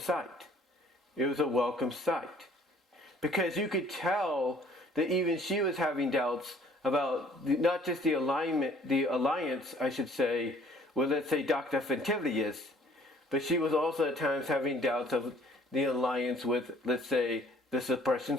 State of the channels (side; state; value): both; normal; correlation 0.57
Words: It was a welcome sight. Because you could tell that even she was having doubts about not just the alliance, I should say, with, let's say, Dr. Fentivius, but she was also at times having doubts of the alliance with, let's say, the Suppression